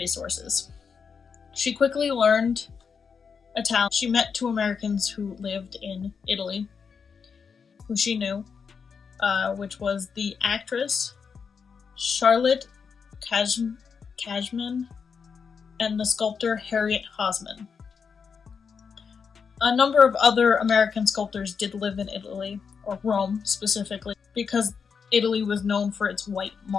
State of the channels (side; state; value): right; quieter; 6.0 dB